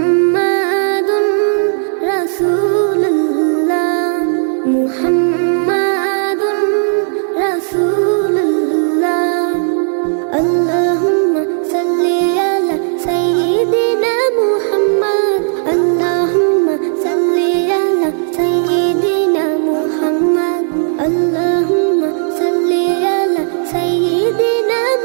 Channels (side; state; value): left; silent; digital silence